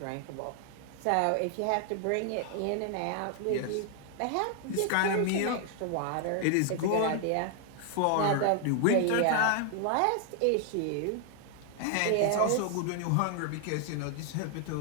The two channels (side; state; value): both; different; correlation 0.00